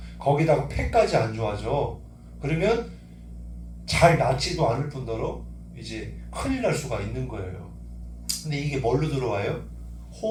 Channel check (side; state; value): both; identical; correlation 1.00